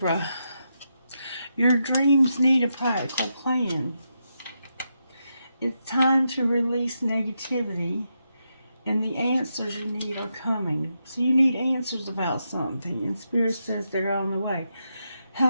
Your dreams need a practical plan. It's time to release negativity, and the answers you need are coming. So you need answers about something, and Spirit says they're on the way.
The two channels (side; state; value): both; inverted; correlation -0.84